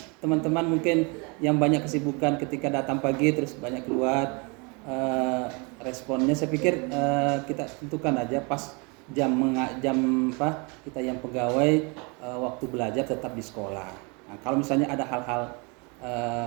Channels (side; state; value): left; quieter; 31.2 dB